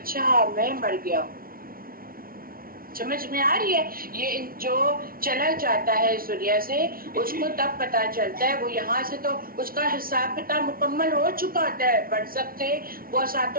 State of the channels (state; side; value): late; left; 0.43 ms